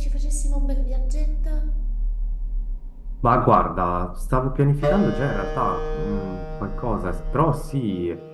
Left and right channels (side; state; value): both; identical; correlation 1.00